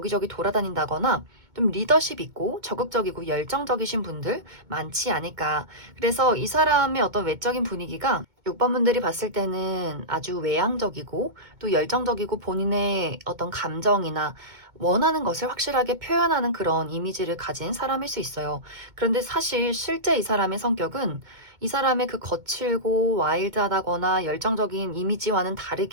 돌아다닌다거나 좀 리더십 있고 적극적이고 열정적이신 분들 많지 않을까. 그래서 이 사람의 어떤 외적인 분위기가 6번 분들이 봤을 때는 아주 외향적이고 또 열정적이고 본인의 어떤 감정이나 원하는 것을 확실하게 표현하는 그런 이미지를 가진 사람일 수 있어요. 그런데 사실 실제 이 사람의 성격은 이 사람의 그 거칠고 와일드하다거나 열정적인 이미지와는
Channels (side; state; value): left; late; 2.2 ms